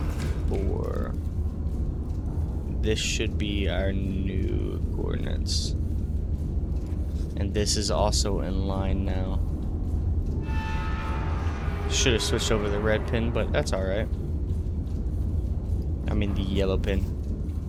This should be our new coordinates. And this is also in line now. Should have switched over the red pin, but that's alright. I mean the yellow pin.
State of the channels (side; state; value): both; identical; correlation 1.00